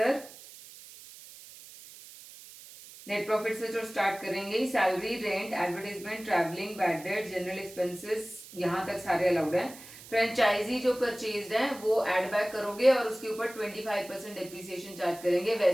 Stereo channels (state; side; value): noise; right; hiss, 17 dB below the sound